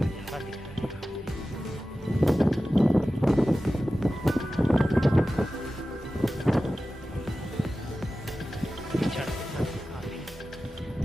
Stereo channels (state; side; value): normal; both; correlation 0.95